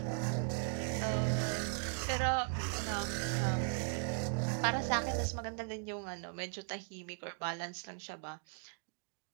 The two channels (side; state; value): left; silent; 52 dB below the other